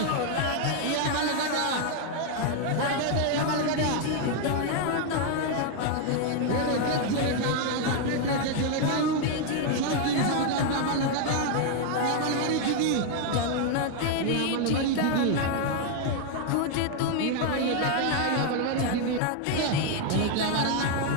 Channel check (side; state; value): both; different; correlation 0.00